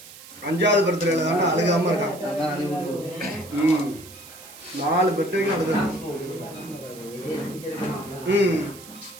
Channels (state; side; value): noise; right; hiss, 18 dB below the sound